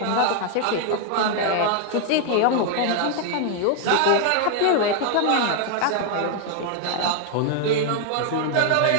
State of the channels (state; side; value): different; both; correlation 0.00